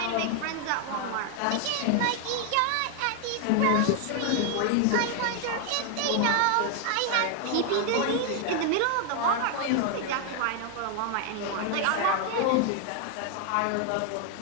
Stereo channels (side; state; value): both; different; correlation 0.00